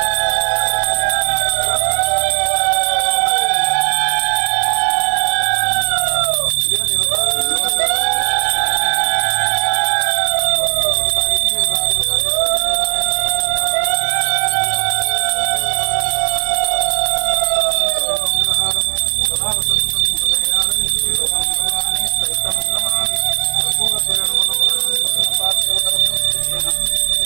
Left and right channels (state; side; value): silent; left; digital silence